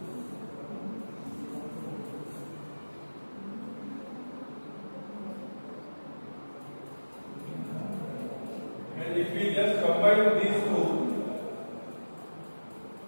And if we just combine these two,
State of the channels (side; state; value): both; inverted; correlation -1.00